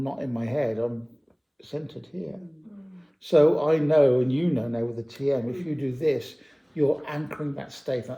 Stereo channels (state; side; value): identical; both; correlation 1.00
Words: not in my head, I'm centered here. So I know, and you know now with the TM, if you do this, you're anchoring that